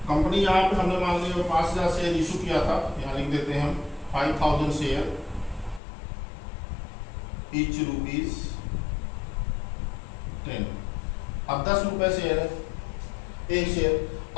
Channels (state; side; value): drops out; right; at 5.8 s